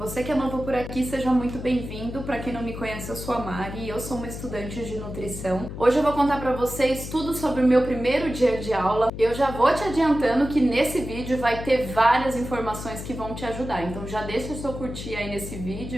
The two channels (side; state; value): left; noise; hum, 9 dB below the sound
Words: Você que é novo por aqui, seja muito bem-vindo. Para quem não me conhece, eu sou a Mari e eu sou uma estudante de nutrição. Hoje eu vou contar para vocês tudo sobre o meu primeiro dia de aula. Eu já vou te adiantando que nesse vídeo vai ter várias informações que vão te ajudar. Então já deixa o seu curtir aí nesse